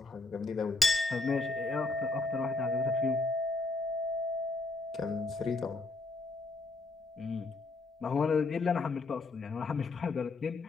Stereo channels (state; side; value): quieter; right; 3.4 dB